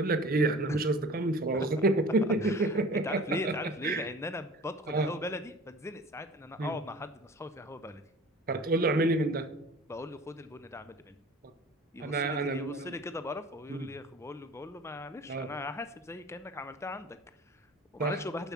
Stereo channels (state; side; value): normal; both; correlation 0.43